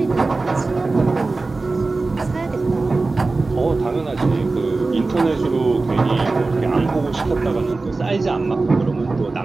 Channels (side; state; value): left; quieter; 3.6 dB